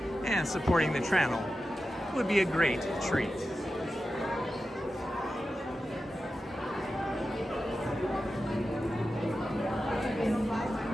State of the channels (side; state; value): both; normal; correlation 0.92